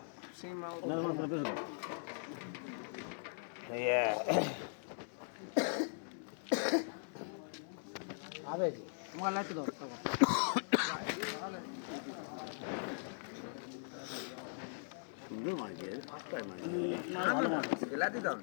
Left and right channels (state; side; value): silent; right; digital silence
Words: না না না বেশ আবে তোমার লাইট দাও সুন্দর মাছ আটটায় মাছ লাইট দাও